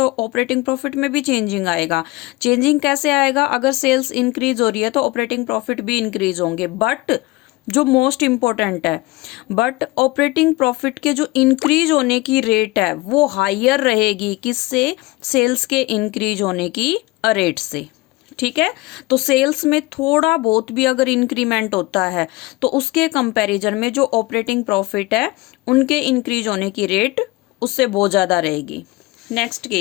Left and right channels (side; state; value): right; quieter; 21.6 dB